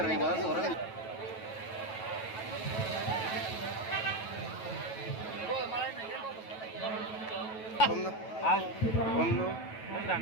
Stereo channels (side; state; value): right; late; 9.2 ms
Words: वाला तो orang bom no bom no bom dam